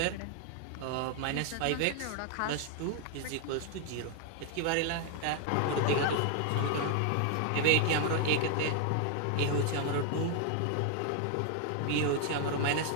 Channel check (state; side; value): different; both; correlation 0.00